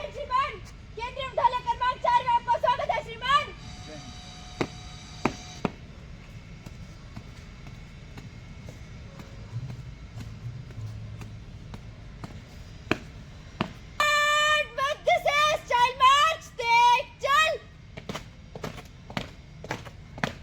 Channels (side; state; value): both; identical; correlation 1.00